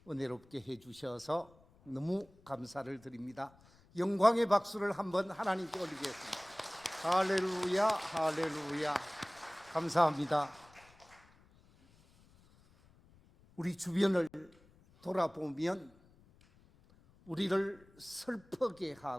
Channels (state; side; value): noise; left; rumble, 28 dB below the sound